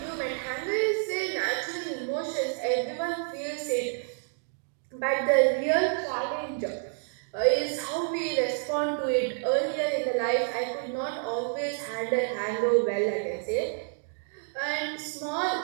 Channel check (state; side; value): silent; left; 59 dB below the other